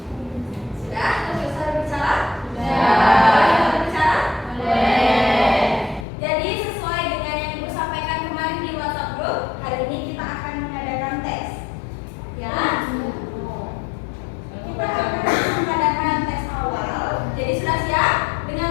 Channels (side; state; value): right; drops out; at 6.1 s